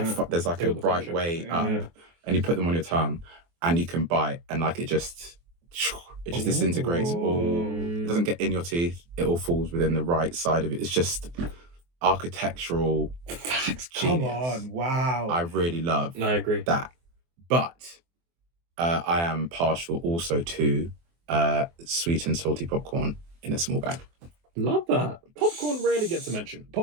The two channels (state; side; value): late; left; 24 ms